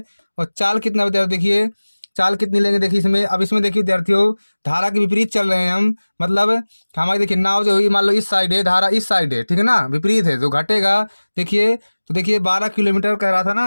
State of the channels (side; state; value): both; inverted; correlation -1.00